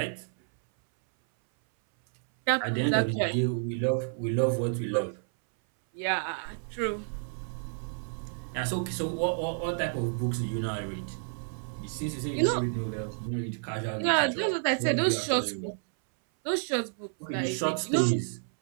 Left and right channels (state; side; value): silent; left; 58 dB below the other